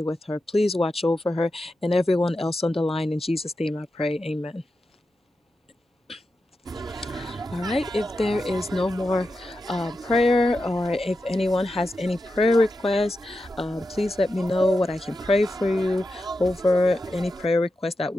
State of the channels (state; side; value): normal; both; correlation 0.89